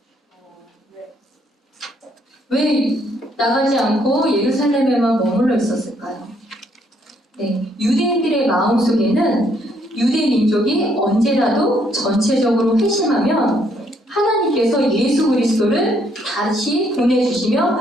왜 나가지 않고 예루살렘에만 머물러 있었을까요? 네, 유대인들의 마음속에는 유대 민족이 언제라도 전체적으로 회심하면 하나님께서 예수 그리스도를 다시 보내주시면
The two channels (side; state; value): both; normal; correlation 0.70